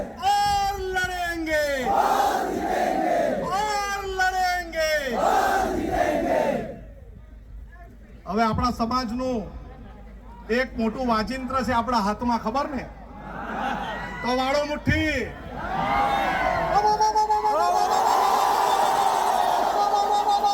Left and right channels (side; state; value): both; identical; correlation 1.00